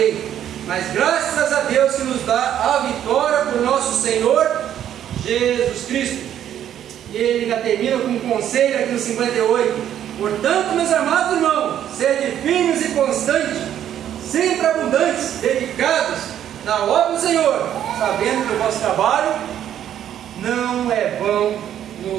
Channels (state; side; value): quieter; left; 10.6 dB